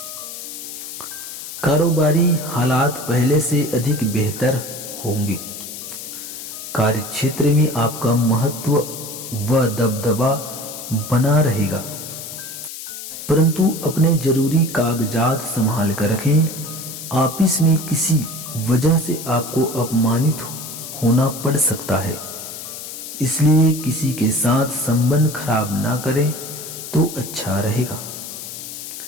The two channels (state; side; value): noise; left; hiss, 10 dB below the sound